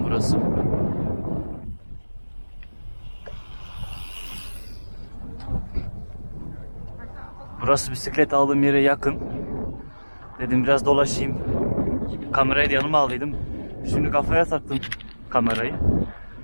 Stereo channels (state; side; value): inverted; both; correlation -1.00